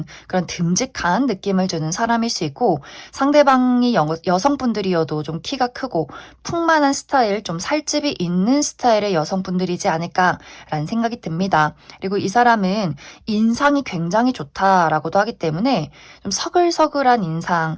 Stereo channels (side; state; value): both; identical; correlation 1.00